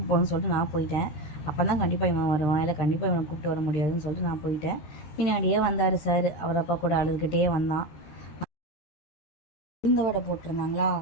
போகணுன்னு சொல்லிட்டு நான் போயிட்டேன். அப்போ தான் கண்டிப்பாக இவன் வருவான், இல்லை கண்டிப்பாக இவனை கூப்பிட்டு வர முடியாதுன்னு சொல்லிட்டு நான் போயிட்டேன். பின்னாடியே வந்தார் சார். அவர் அப்பா கூட அழுதுகிட்டே வந்தான். உளுந்த வடை போட்டிருந்தாங்களா,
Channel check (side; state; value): right; late; 13 ms